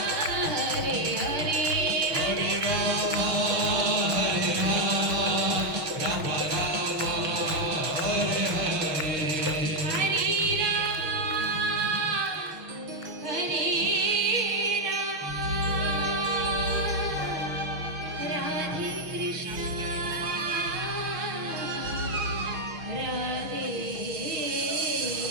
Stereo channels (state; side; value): late; left; 6.3 ms